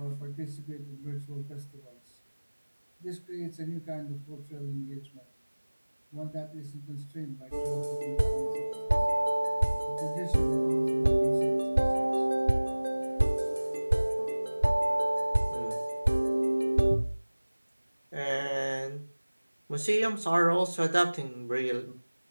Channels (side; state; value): both; inverted; correlation -1.00